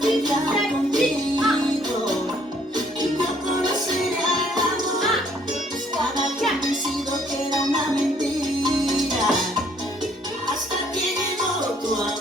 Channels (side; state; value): both; normal; correlation 0.64